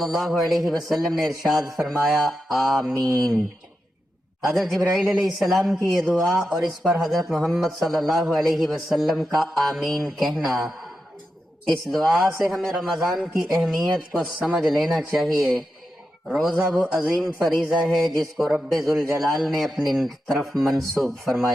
اللہ علیہ وسلم نے ارشاد فرمایا آمین۔ حضرت جبرائیل علیہ السلام کی یہ دعا اور اس پر حضرت محمد صلی اللہ علیہ وسلم کا آمین کہنا، اس دعا سے ہمیں رمضان کی اہمیت کو سمجھ لینا چاہیے۔ روزہ وہ عظیم فریضہ ہے جس کو رب ذوالجلال نے اپنی طرف منسوب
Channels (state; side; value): normal; both; correlation 0.89